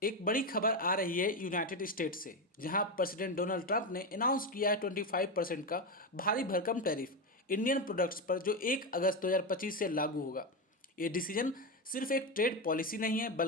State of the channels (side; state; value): both; normal; correlation 0.12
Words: एक बड़ी खबर आ रही है यूनाइटेड स्टेट से, जहां प्रेसिडेंट डोनाल्ड ट्रंप ने अनाउंस किया है 25% का भारी भरकम टैरिफ इंडियन प्रोडक्ट्स पर, जो 1 अगस्त 2025 से लागू होगा। ये डिसीजन सिर्फ एक ट्रेड पॉलिसी नहीं है,